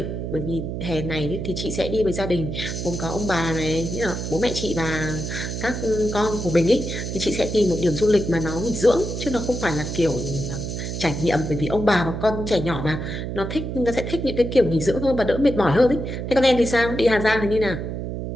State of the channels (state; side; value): noise; right; hum, 5 dB below the sound